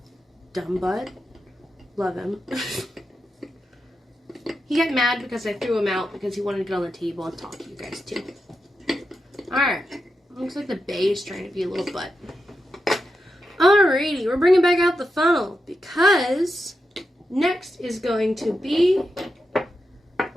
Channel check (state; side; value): normal; both; correlation 0.88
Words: Dumb butt. Love him. He got mad because I threw him out because he wanted to get on the table and talk to you guys too. Alright. Looks like the bay is trying to be a little butt. Alrighty, we're bringing back out the funnel because next is going to be